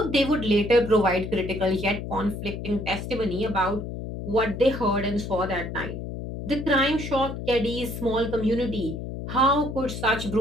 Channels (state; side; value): noise; left; hum, 7 dB below the sound